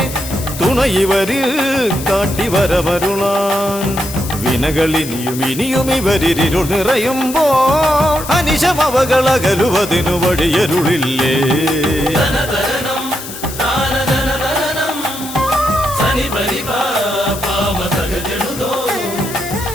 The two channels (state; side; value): noise; left; hiss, 11 dB below the sound